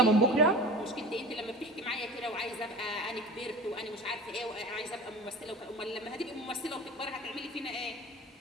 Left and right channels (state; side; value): normal; both; correlation 0.35